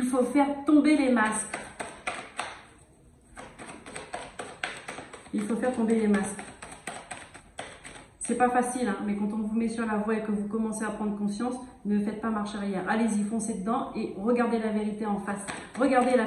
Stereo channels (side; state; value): both; identical; correlation 1.00